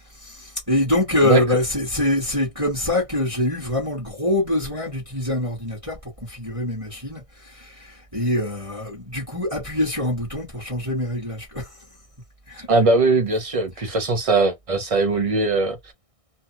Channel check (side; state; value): left; late; 1.6 ms